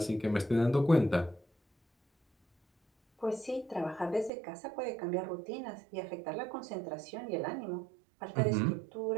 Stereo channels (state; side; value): drops out; left; at 4.3 s